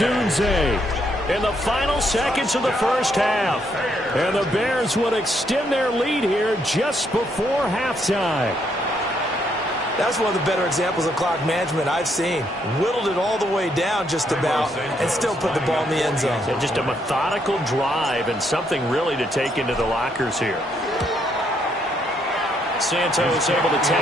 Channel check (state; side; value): normal; both; correlation 0.74